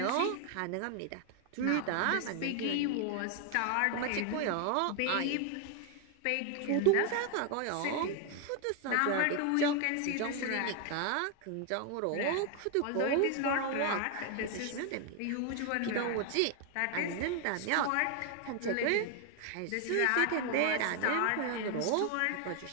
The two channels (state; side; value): different; both; correlation 0.01